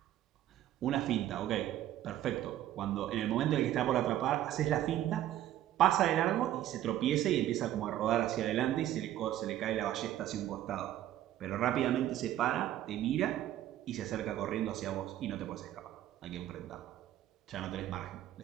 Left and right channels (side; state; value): left; quieter; 12.8 dB